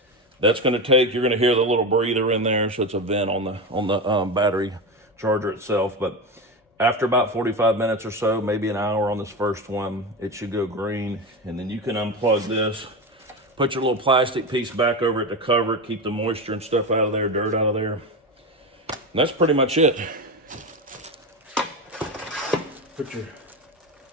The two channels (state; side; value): normal; both; correlation 0.20